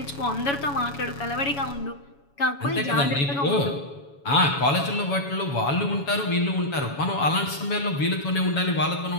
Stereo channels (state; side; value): late; right; 7.1 ms